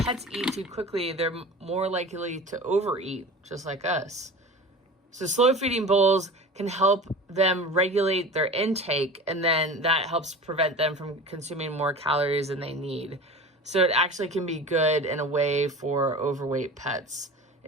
eat too quickly, they're more likely to overeat, just like us. So slow feeding bowls can help them regulate their intake, and then that helps prevent them from consuming more calories than they need. So it actually can be good in a way for overweight pets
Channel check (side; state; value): both; normal; correlation 0.36